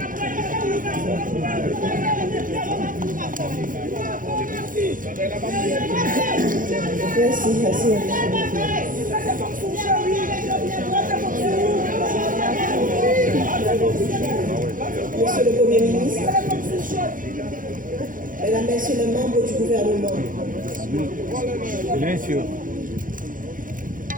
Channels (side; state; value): left; late; 0.39 ms